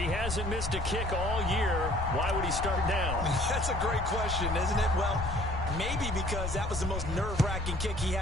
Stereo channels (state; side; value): noise; left; rumble, 6 dB below the sound